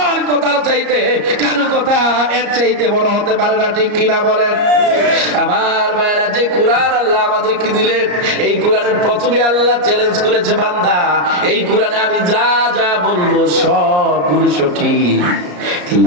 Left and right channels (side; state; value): left; late; 34 ms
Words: কথার চাইতে কারো কথা এর চাইতে বড় হতে পারে না, ঠিক কিনা বলেন? আমার ভাইরা, যে কোরআন আল্লাহ আমাদেরকে দিলেন, এই কোরআনের প্রথমে আল্লাহ চ্যালেঞ্জ করেছে, বান্দা এই কোরআনে আমি যা যা বলবো সবগুলো সঠিক।